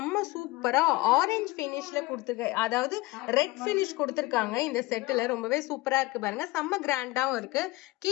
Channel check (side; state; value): right; quieter; 20.7 dB